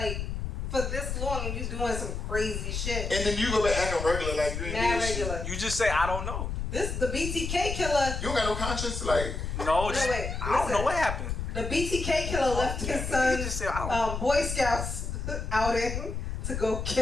for this long and you doing some crazy shit? And then you go back acting regular like you ain't regular. You just say I don't know. The BTK killer. You don't got no conscience, like. No, just, wait, I don't know what happened. The BTK killer left his son Boy Scouts outing to go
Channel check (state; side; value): noise; left; rumble, 4 dB below the sound